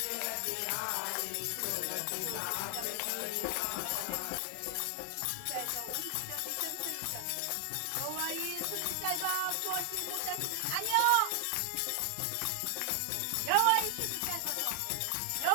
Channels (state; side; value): different; both; correlation 0.00